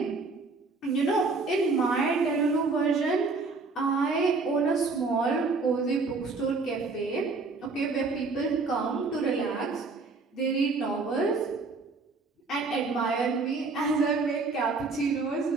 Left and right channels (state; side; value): quieter; left; 4.0 dB